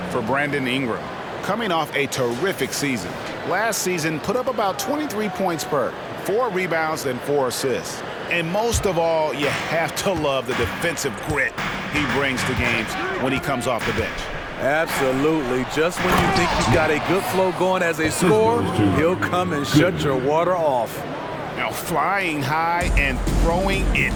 for Brandon Ingram. Coming off a terrific season. Last season, put up about 23 points per, 4 rebounds and 4 assists. And most of all, you have to love the defensive grit he brings to games when he comes off the bench. Absolutely. Just when you think you've got a good flow going as a scorer, he'll come and shut your water off. Now flying high and throwing it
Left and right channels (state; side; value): identical; both; correlation 1.00